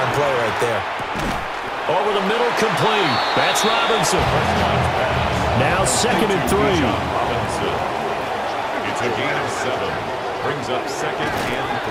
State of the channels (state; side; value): identical; both; correlation 1.00